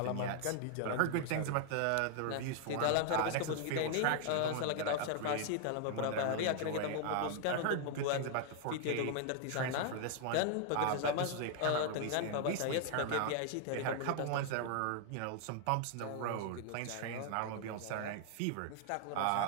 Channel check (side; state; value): both; different; correlation 0.00